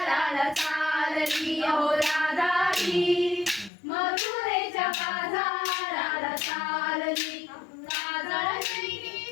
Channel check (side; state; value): right; drops out; at 3.7 s